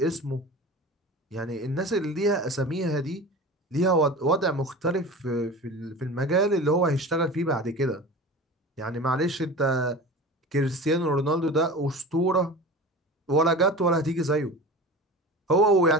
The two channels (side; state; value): both; normal; correlation 0.34